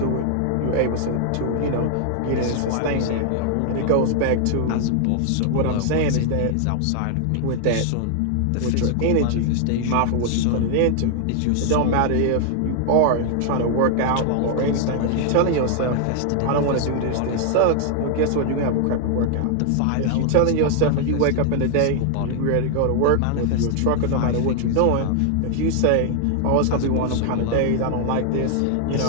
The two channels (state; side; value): different; both; correlation 0.00